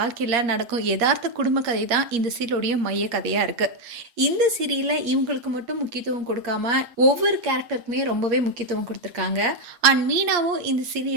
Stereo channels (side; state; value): left; late; 8.5 ms